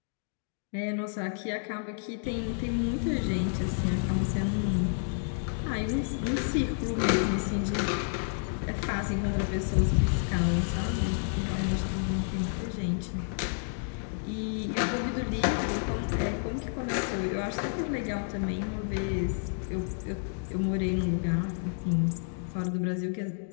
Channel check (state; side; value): silent; right; digital silence